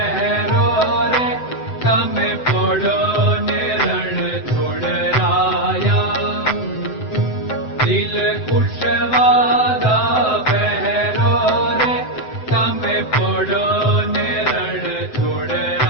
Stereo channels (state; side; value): late; right; 7.8 ms